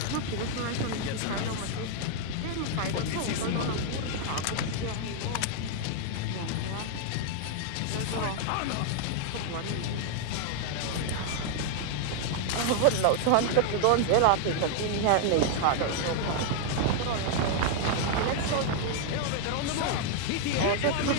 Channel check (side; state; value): both; different; correlation 0.00